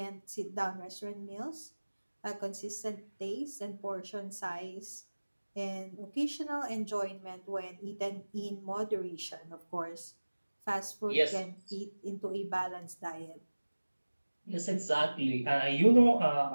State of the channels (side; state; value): both; inverted; correlation -1.00